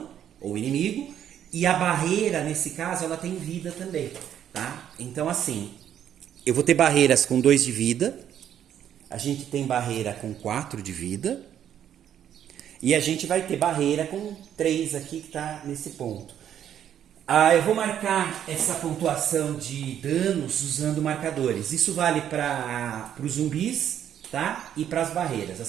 ou o inimigo, e a barreira, nesse caso, ela tem vida também, tá? Então, assim, eu vou ter barreiras com 2 de vida, a gente tem barreira com 4 de vida, e a gente vai ter barreira com 3 aqui que está nesse ponto. Eu vou marcar essa pontuação de danos usando marcadores. Isso vale para os zumbis, tá? E para as barreiras.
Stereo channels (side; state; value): left; quieter; 9.9 dB